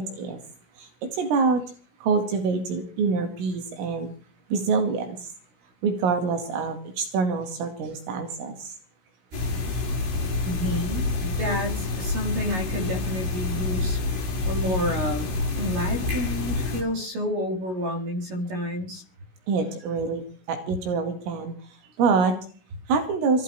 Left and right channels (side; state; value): left; late; 16 ms